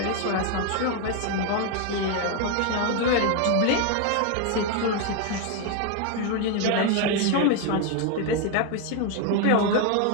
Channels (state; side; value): different; both; correlation 0.01